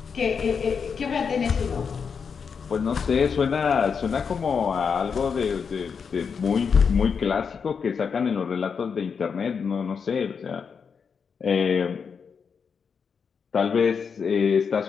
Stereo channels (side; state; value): right; quieter; 6.1 dB